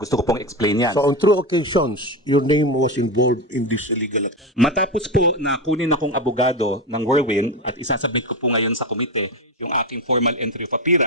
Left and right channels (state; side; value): normal; both; correlation 0.17